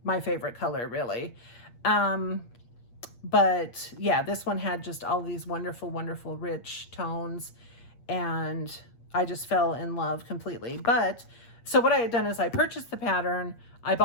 my favorite color, really. But yeah, this one had just all these wonderful, wonderful, rich tones, and I just fell in love completely. But So what I had done is I purchased the pattern, I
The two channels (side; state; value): right; late; 8.5 ms